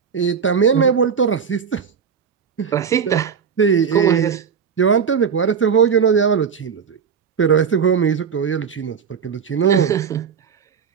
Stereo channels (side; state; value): left; quieter; 6.8 dB